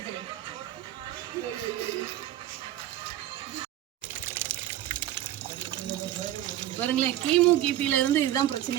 பாருங்களேன், கிமு கிபில இருந்து இதுதான்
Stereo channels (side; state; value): left; quieter; 13.2 dB